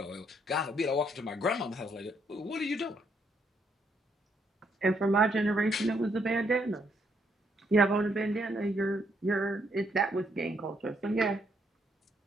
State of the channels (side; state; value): both; normal; correlation 0.73